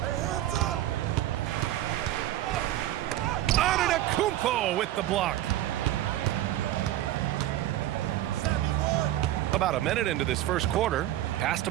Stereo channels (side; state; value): left; quieter; 13.8 dB